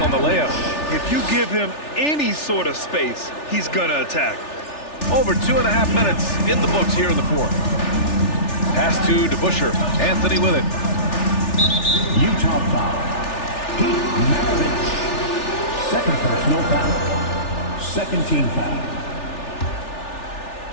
the layup. If you give him any sort of space, he's going to attack. Over 2.5 minutes in the books here in the fourth. Pass to DeBusschere. Anthony with it. Utah foul. Pete Maravich. Second personal foul. Second team foul.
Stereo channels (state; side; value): late; right; 3.4 ms